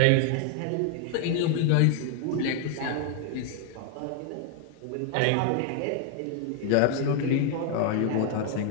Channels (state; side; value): different; both; correlation 0.00